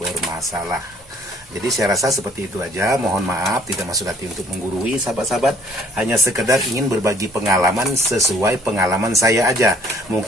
Jadi saya rasa seperti itu aja. Mohon maaf, tidak maksud hati untuk menggurui sahabat-sahabat. Hanya sekedar ingin berbagi pengalaman sesuai pengalaman saya aja.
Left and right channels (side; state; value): both; normal; correlation 0.58